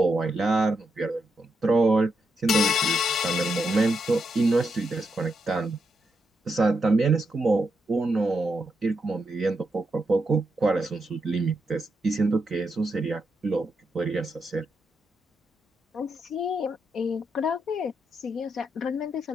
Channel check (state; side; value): normal; both; correlation 0.82